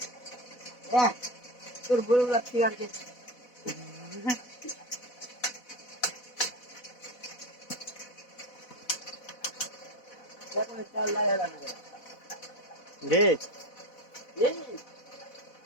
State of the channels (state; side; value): late; right; 4.0 ms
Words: তোর বড় লাগছে আর কি দেখো চাল লাগা লাগবে देख এই